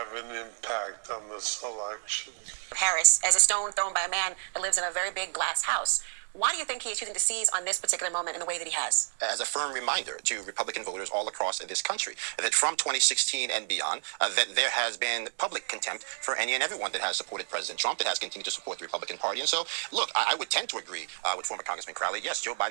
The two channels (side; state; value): left; silent; 58 dB below the other